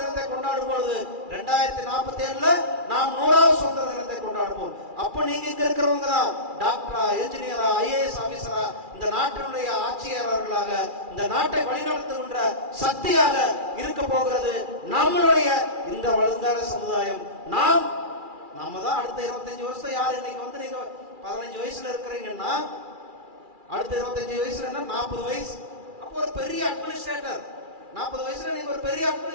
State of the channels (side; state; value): left; late; 2.4 ms